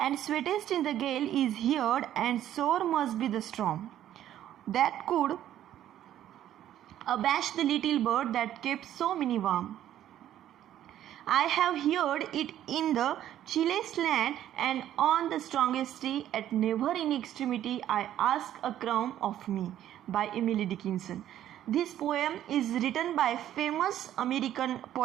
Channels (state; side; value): quieter; left; 11.8 dB